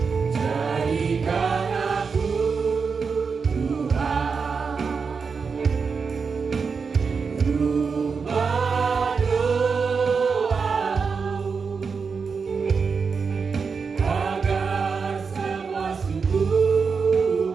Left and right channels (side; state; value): left; quieter; 5.4 dB